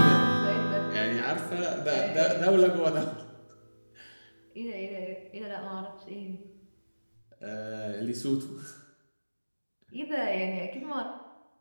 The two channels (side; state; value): both; inverted; correlation -1.00